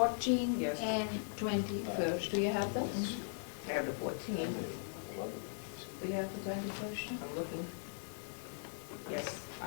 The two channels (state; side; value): silent; right; digital silence